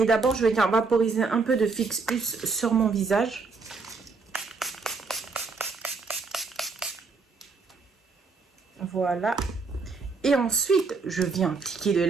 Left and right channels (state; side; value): quieter; left; 4.4 dB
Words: d'abord je vais venir vaporiser un peu de Fix Plus sur mon visage. Voilà. Et ensuite je viens appliquer de